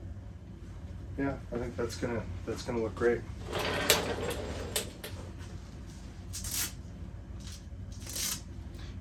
Yeah, I think that's gonna look great.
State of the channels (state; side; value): identical; both; correlation 1.00